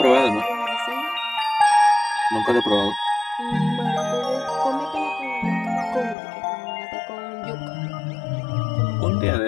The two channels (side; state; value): right; drops out; at 6.2 s